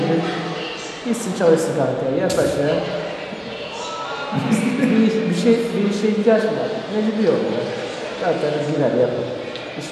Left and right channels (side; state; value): both; identical; correlation 1.00